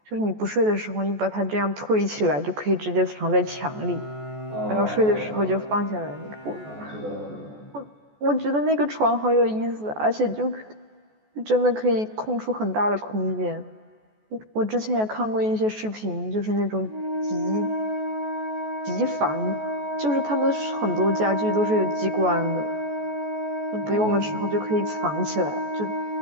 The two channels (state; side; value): late; left; 14 ms